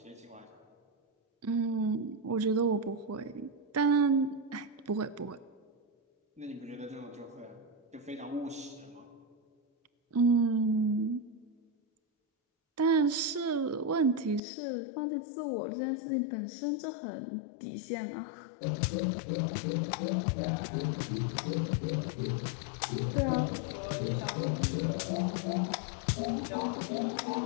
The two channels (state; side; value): drops out; right; at 14.4 s